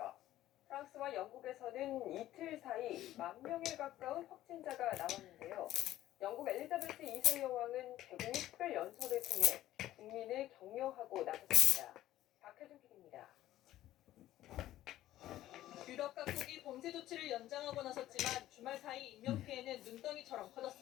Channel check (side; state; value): right; quieter; 14.1 dB